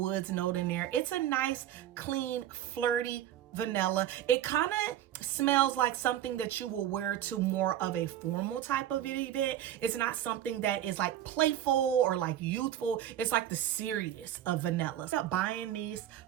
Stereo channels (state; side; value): quieter; left; 11.6 dB